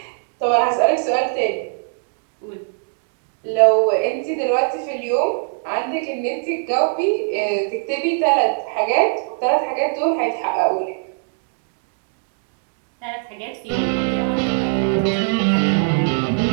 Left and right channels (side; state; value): left; silent; digital silence